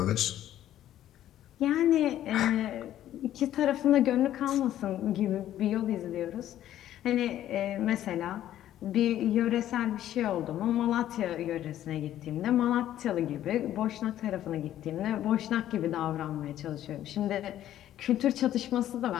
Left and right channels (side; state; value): right; quieter; 12.2 dB